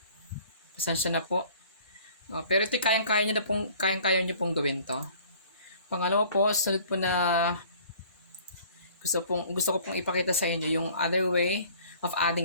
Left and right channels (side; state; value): both; inverted; correlation -0.52